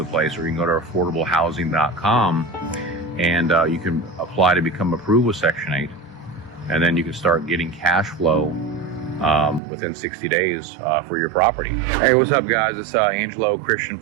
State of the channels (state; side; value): drops out; left; at 9.6 s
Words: place. Or you can go to affordablehousing.com and you can apply to become approved with Section 8. And then you can start getting cash flow within 60 days for your property. Hey, what's up, guys? It's Angelo Christian